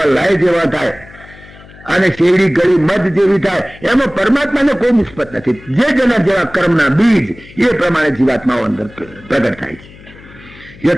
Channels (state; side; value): noise; left; hum, 21 dB below the sound